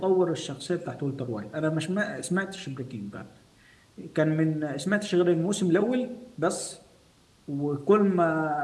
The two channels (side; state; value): both; identical; correlation 1.00